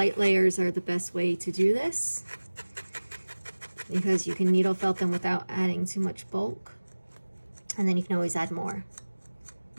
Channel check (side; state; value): both; inverted; correlation -1.00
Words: layers are the best way to do this because you can needle felt them without adding too much bulk, and then you can always add more.